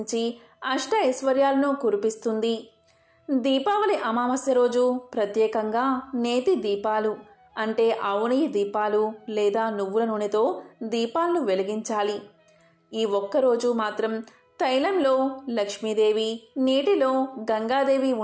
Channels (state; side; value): identical; both; correlation 1.00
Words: అష్ట ఐశ్వర్యాలను కురిపిస్తుంది. దీపావళి అమావాస్య రోజు ప్రత్యేకంగా నేతి దీపాలు అంటే ఆవు నెయ్యి దీపాలు లేదా నువ్వుల నూనెతో దీపాలను వెలిగించాలి. ఈ ఒక్కరోజు మాత్రం తైలంలో లక్ష్మీదేవి, నీటిలో గంగాదేవి